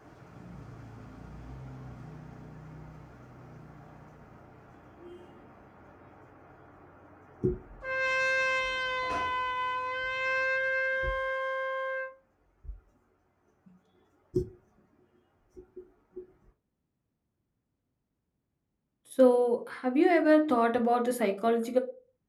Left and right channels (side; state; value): both; identical; correlation 1.00